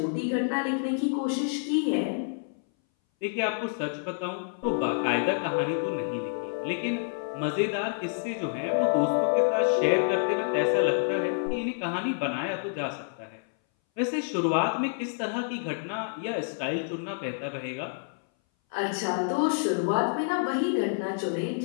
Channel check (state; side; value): silent; right; 59 dB below the other